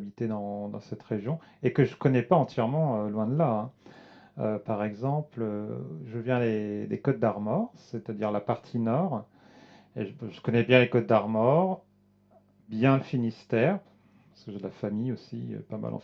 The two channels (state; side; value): identical; both; correlation 1.00